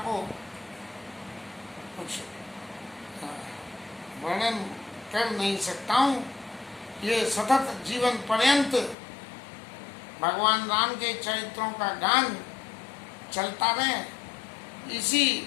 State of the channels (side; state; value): right; drops out; at 9.0 s